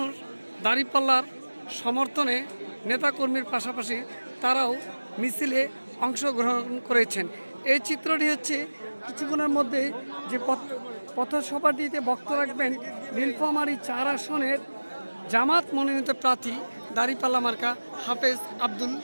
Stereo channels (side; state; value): both; inverted; correlation -1.00